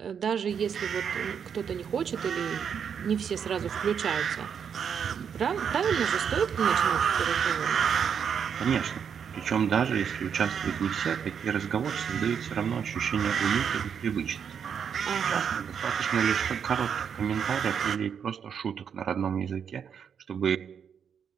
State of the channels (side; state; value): left; quieter; 7.4 dB